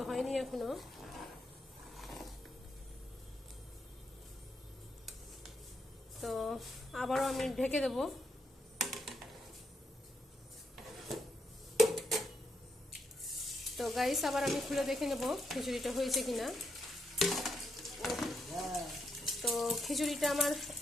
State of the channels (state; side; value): normal; both; correlation 0.79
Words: হয়নি এখনো। তো আবারও আমি ঢেকে দেব। তো গাইস, আবার আমি খুলে দেখে নেব খিচুড়িটা হয়েছে কিনা। তো খিচুড়িটা আমার